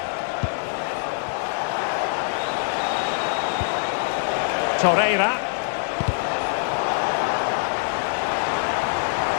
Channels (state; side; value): silent; right; digital silence